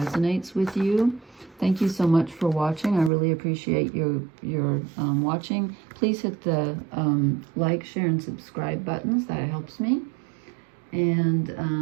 with you. Thank you so much for watching. I really appreciate your watching. Please hit the like, share, and subscribe buttons. That helps me. And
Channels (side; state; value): left; drops out; at 3.1 s